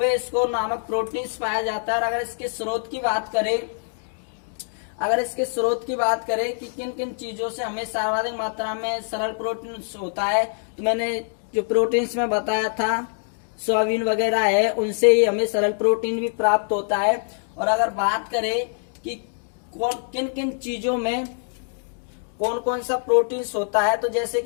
नामक प्रोटीन्स पाया जाता है। और अगर इसके स्रोत की बात करें कि किन किन चीजों से हमें सर्वाधिक मात्रा में सरल प्रोटीन होता है, तो मैंने जो प्रोटीन्स में बताया था सोयाबीन वगैरह है, उनसे ही हमें सरल प्रोटीन भी प्राप्त होता है। और अगर बात करें कि किन किन चीजों में कौन कौन सा प्रोटीन्स होता है, तो जैसे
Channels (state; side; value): silent; right; digital silence